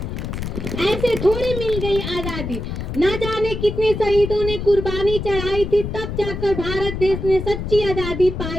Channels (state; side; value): noise; left; rumble, 5 dB below the sound